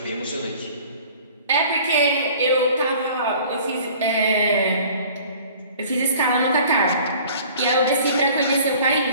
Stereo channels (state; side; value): inverted; both; correlation -0.49